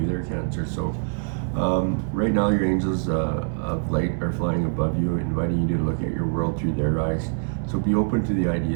there, Cancer. So right now your angels of light are flying above you, inviting you to look at your world through their eyes. So be open to the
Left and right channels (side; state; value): left; silent; 62 dB below the other